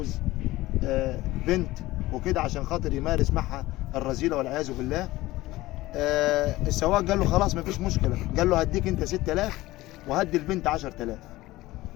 بنت وكده عشان خاطر يمارس معها الرذيلة والعياذ بالله. السواق قال له خلاص مفيش مشكلة، قال له هديك أنت 6000 وهدي البنت 10000.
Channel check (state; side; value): quieter; right; 18.0 dB